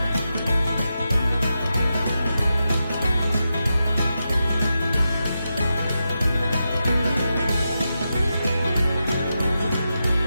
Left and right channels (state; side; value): inverted; both; correlation -0.88